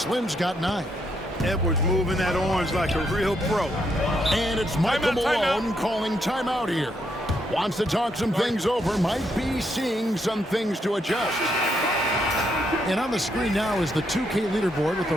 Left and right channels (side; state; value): both; normal; correlation 0.77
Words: got 9. Edwards moving that orange like a real pro. And it's Michael Malone calling timeout here. Wants to talk some things over. Might be seeing some things to adjust. And on the screen now is the 2K leaderboard with a